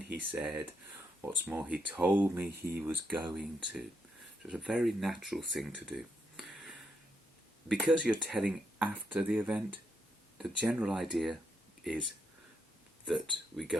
he said, what's more, he told me he was going to. So it's a very natural thing to do. Because you're telling after the event, the general idea is that we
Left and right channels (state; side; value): normal; both; correlation 0.80